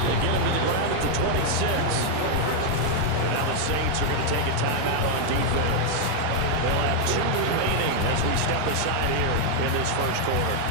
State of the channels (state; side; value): different; both; correlation 0.00